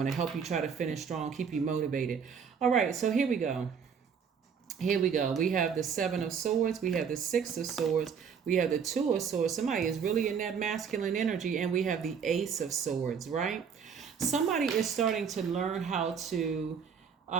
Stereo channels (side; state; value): left; quieter; 6.7 dB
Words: to help you try to finish strong, keep you motivated. All right. So here we go. We have the Seven of Swords. We have the Six of Swords. We have the Two of Swords. Somebody is really in that masculine energy. And we have the Ace of Swords, right? Somebody is starting to learn how to,